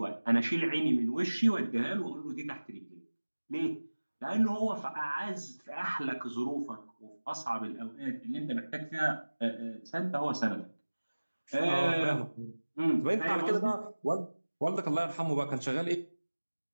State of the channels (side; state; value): both; inverted; correlation -1.00